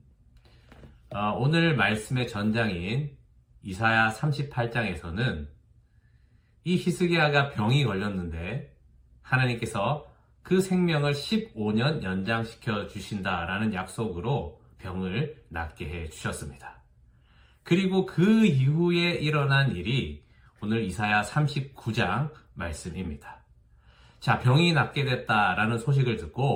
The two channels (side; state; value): both; identical; correlation 1.00